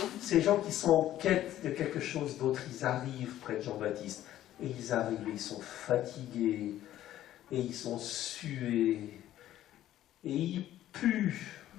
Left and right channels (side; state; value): right; quieter; 13.0 dB